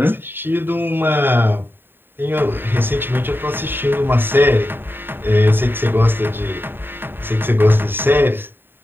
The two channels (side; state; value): left; late; 0.098 ms